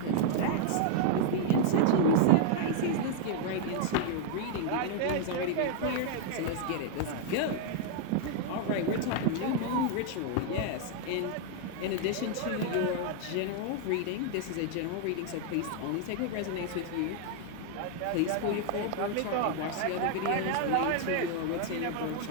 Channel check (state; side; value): different; both; correlation 0.00